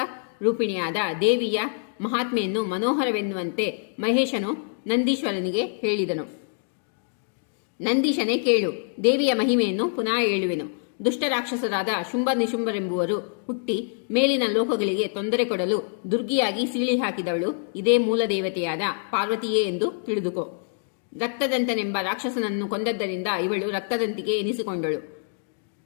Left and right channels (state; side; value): silent; right; digital silence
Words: ರೂಪಿಣಿಯಾದ ದೇವಿಯ ಮಹಾತ್ಮೆಯನ್ನು ಮನೋಹರವೆನ್ನುವಂತೆ ಮಹೇಶನು ನಂದೀಶ್ವರನಿಗೆ ಹೇಳಿದನು. ನಂದೀಶನೇ ಕೇಳು, ದೇವಿಯ ಮಹಿಮೆಯನ್ನು ಪುನಃ ಹೇಳುವೆನು. ದುಷ್ಟ ರಾಕ್ಷಸರಾದ ಶುಂಭ ನಿಶುಂಭರೆಂಬುವರು ಹುಟ್ಟಿ ಮೇಲಿನ ಲೋಕಗಳಿಗೆ ತೊಂದರೆ ಕೊಡಲು ದುರ್ಗಿಯಾಗಿ ಸೀಳಿ ಹಾಕಿದವಳು ಇದೇ ಮೂಲ ದೇವತೆಯಾದ ಪಾರ್ವತಿಯೇ ಎಂದು ತಿಳಿದುಕೋ. ರಕ್ತದಂತನೆಂಬ ರಾಕ್ಷಸನನ್ನು ಕೊಂದದ್ದರಿಂದ ಇವಳು ರಕ್ತದಂತಿಗೆ ಎನಿಸಿಕೊಂಡಳು.